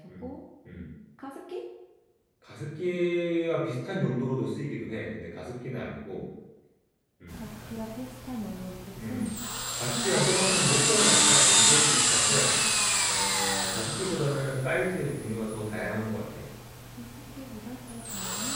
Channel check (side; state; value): both; identical; correlation 1.00